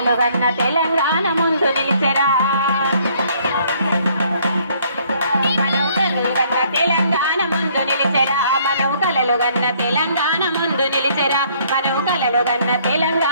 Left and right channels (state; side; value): inverted; both; correlation -0.63